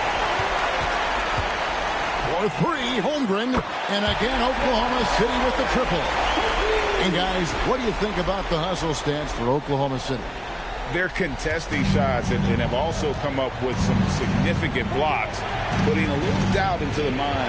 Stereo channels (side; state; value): both; identical; correlation 1.00